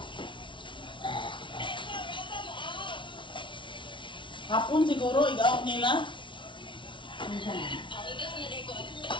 hapon siguro, igaot nila.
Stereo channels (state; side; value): late; right; 0.24 ms